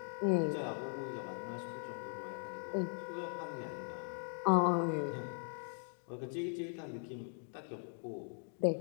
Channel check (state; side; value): silent; right; 51 dB below the other